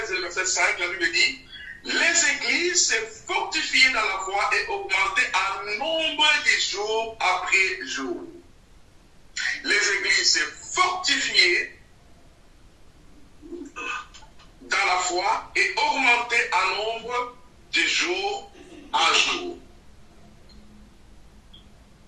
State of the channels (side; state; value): both; identical; correlation 1.00